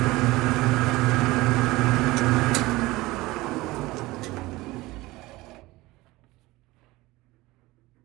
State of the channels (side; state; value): left; quieter; 19.9 dB